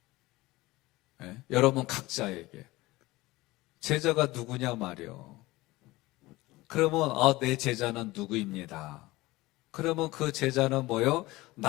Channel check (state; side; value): quieter; right; 19.9 dB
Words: 여러분 각자에게. 제자가 누구냐 말이요. 그러면 내 제자는 누구입니다. 그러면 그 제자는 뭐요?